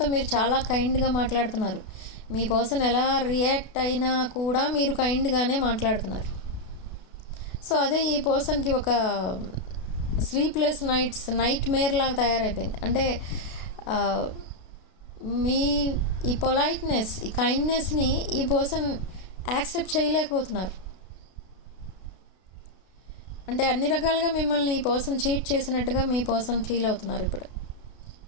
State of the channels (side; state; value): right; late; 32 ms